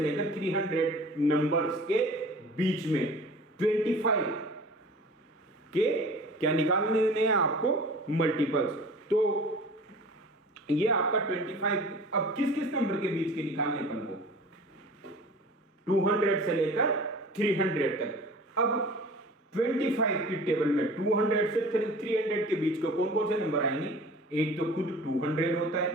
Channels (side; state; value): both; normal; correlation 0.42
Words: 300 नंबर्स के बीच में 25 के क्या निकालने हैं आपको, मल्टीपल्स। तो ये आपका 25, अब किस किस नंबर के बीच के निकालने अपन को, 200 से लेकर 300 तक। अब 25 की टेबल में 200 से 300 के बीच को कौन कौन से नंबर आएंगे, एक तो खुद 200 होता है,